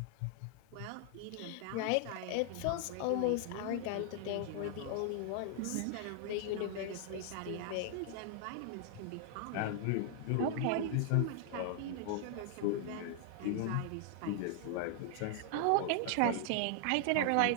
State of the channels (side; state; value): both; different; correlation 0.00